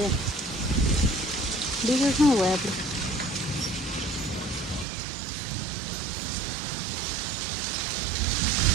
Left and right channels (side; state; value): left; drops out; at 4.9 s